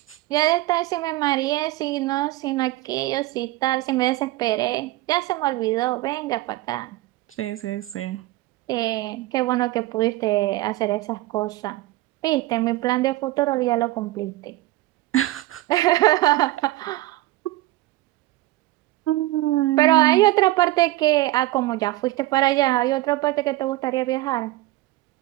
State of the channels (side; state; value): left; quieter; 17.6 dB